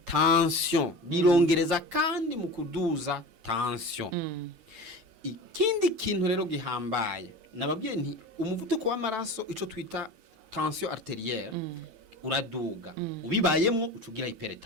birongereza kandi mu kuduza tension. Ikindi kintu rero gihambaye nababwiye nti umuvuduko w'amaraso ico twita tension arterielle uraduga, ubibayemwo ucugira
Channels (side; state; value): left; late; 9.1 ms